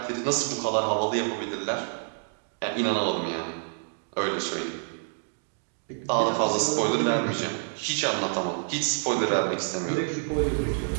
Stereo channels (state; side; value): silent; left; digital silence